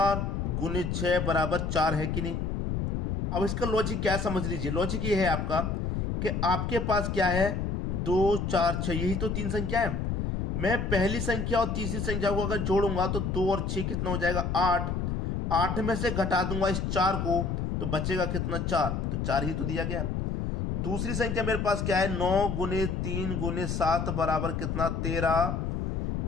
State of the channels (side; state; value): left; noise; rumble, 1 dB below the sound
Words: गुने 6 बराबर 4 है कि नहीं? अब इसका लॉजिक क्या है समझ लीजिए। लॉजिक ये है आपका कि आपके पास क्या है, 2 4 6, यही तो 3 संख्या है। मैं पहली संख्या और तीसरी संख्या को अगर जोड़ूंगा तो 2 और 6 कितना हो जाएगा, 8। 8 में से घटा दूंगा इस 4 को तो बचेगा कितना, 4। तो 4 ही तो दिया गया। दूसरी संख्या मेरे पास क्या है, 9 गुने 3 गुने 7 बराबर कितना, 13।